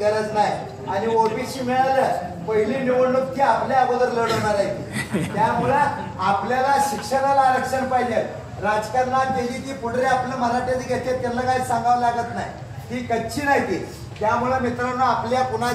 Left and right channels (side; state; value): both; identical; correlation 1.00